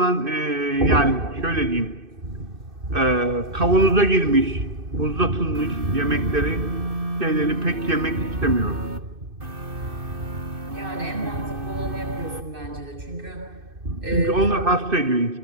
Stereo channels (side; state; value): left; late; 2.6 ms